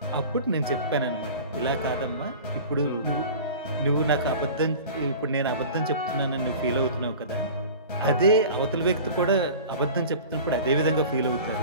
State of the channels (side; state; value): both; inverted; correlation -0.38